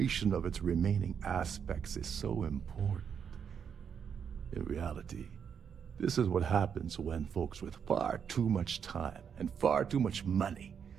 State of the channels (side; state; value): left; quieter; 7.4 dB